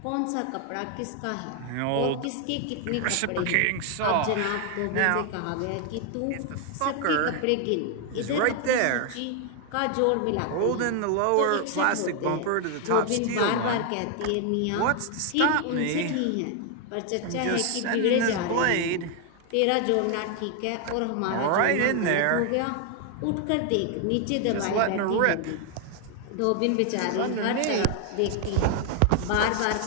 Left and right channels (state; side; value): different; both; correlation 0.00